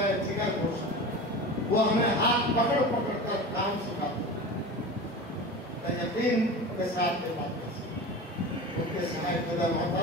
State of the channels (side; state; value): both; normal; correlation 0.31